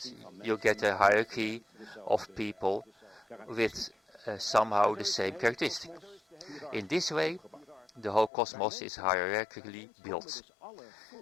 You get a hierarchy of people with somehow the same characteristic. In this way, the whole cosmos is hierarchically built.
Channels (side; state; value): right; drops out; at 8.3 s